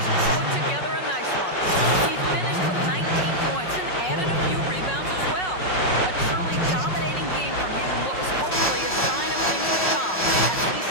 put together a nice one. He finished with 19 points and added a few rebounds as well. A truly dominating game from him and what was hopefully a sign of things to come. At least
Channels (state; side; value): late; right; 5.4 ms